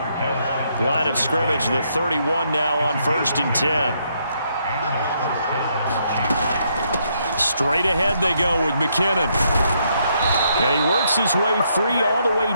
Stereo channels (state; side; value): inverted; both; correlation -0.75